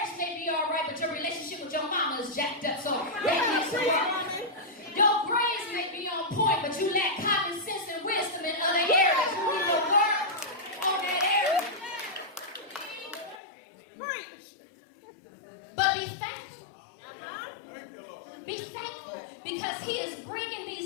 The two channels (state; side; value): drops out; right; at 13.4 s